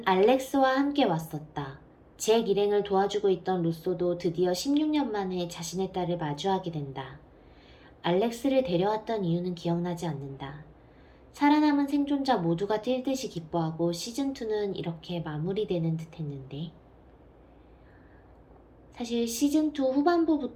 알렉스와 함께 왔었다. 잭 일행을 도와주고 있던 루소도 드디어 16년 만에 자신의 딸을 마주하게 된다. 알렉스를 데려왔던 이유는 기억나지 않는다. 살아남은 생존자 모두가 뛸 듯이 기뻐하고 시즌2는 이렇게 마무리되는 듯 했는데, 사실 시즌2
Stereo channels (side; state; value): both; identical; correlation 1.00